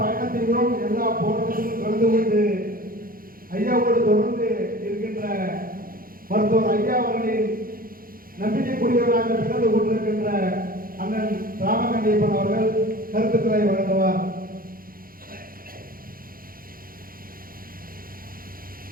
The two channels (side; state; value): left; late; 0.42 ms